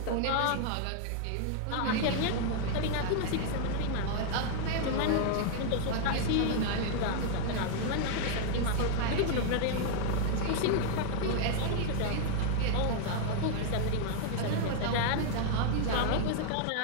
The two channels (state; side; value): different; both; correlation 0.00